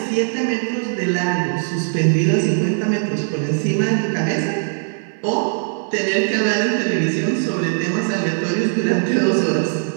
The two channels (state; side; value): silent; left; 64 dB below the other